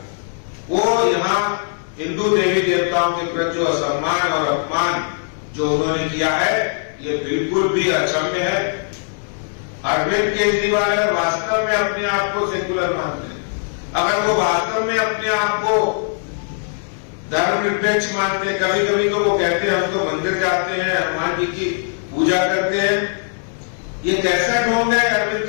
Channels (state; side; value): silent; right; digital silence